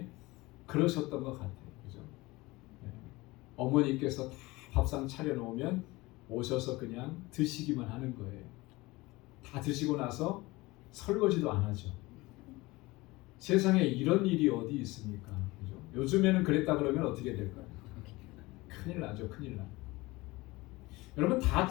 그러셨던 것 같아요. 그죠? 어머니께서 다 밥상 차려놓으면 오셔서 그냥 드시기만 하는 거예요. 다 드시고 나서 설거지도 안 하죠. 세상에 이런 일이 어디 있습니까? 그죠? 요즘에는 그랬다 그러면 어떻게 될까요? 큰일 나죠. 큰일 나. 여러분 다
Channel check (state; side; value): quieter; right; 21.5 dB